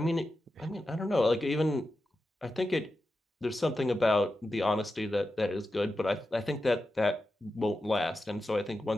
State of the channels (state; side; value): normal; both; correlation 0.90